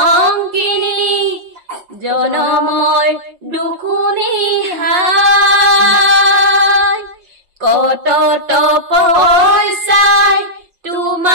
জনমৰ দুখুনি হাই কত তপস্যাই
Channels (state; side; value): late; left; 5.6 ms